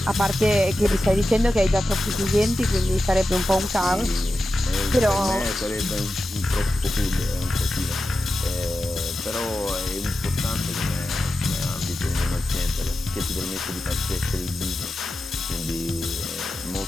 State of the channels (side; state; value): both; normal; correlation 0.92